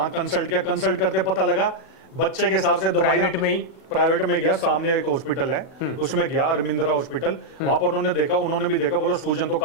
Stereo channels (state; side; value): late; right; 39 ms